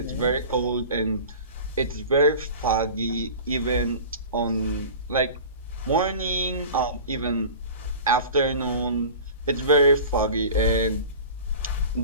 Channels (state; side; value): inverted; both; correlation -0.37